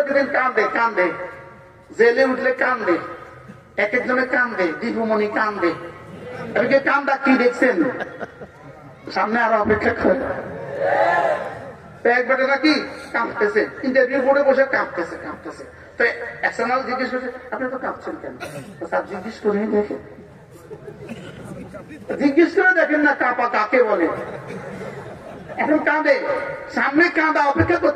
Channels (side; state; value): both; identical; correlation 1.00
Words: কান্দে, জেলে উঠলে কান্দে, এক একজনে কান্দে, দীপুমণি কান্দে। এদিকে কান্দা কি দেখছেন? সামনে আরো অপেক্ষা করে একবারে নাকি কাঁপতেছে, ইন্টারভিউ বোর্ডে বসে কাঁপতেছে। তো এক্সটার্নাল জিজ্ঞেস করছে, আপনি তো কাঁপছেন কেন? স্যার জিজ্ঞেস করে দেখেন, জিজ্ঞেস করে দেখেন না কাঁপা কাকে বলে। এখন কাঁদে, সামনে কাঁদা অপেক্ষা